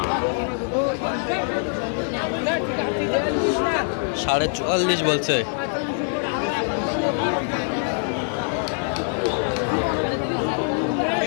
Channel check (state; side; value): silent; right; 58 dB below the other